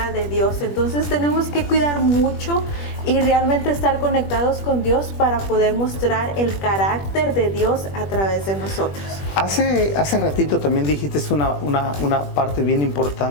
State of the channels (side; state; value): right; late; 21 ms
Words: De Dios. Entonces tenemos que cuidar mucho y realmente estar conectados con Dios para poder mostrar el carácter de Dios a través de nosotros. Hace ratito también dijiste una parte bien